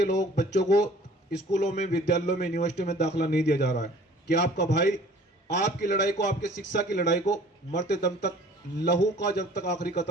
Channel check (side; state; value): both; normal; correlation 0.51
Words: लोग बच्चों को स्कूलों में, विद्यालयों में, यूनिवर्सिटी में दाखिला नहीं दिया जा रहा है, कि आपका भाई आपकी लड़ाई को, आपके शिक्षा की लड़ाई को मरते दम तक, लहू का जब तक आखिरी